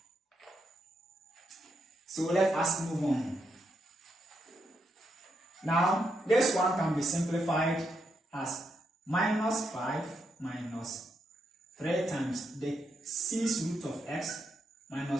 So let us move on. Now, this one can be simplified as minus 5 minus 3 times the 6th root of x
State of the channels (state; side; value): normal; both; correlation 0.81